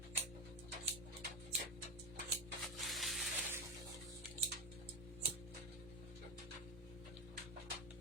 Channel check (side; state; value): both; normal; correlation 0.13